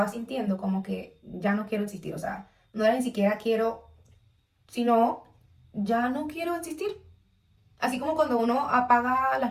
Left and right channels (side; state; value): both; identical; correlation 1.00